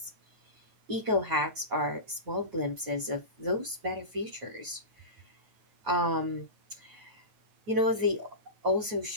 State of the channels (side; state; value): left; late; 9.2 ms